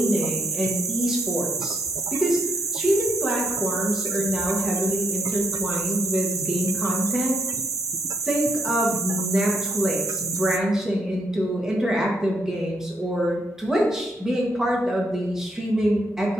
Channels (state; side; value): normal; both; correlation 0.73